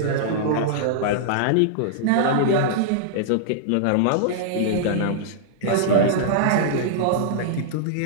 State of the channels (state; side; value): different; both; correlation -0.02